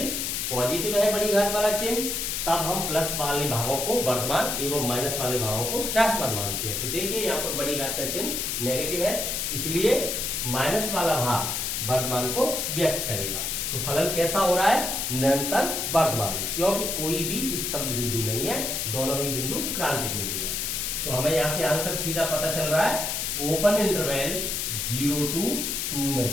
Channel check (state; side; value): noise; left; hiss, 1 dB below the sound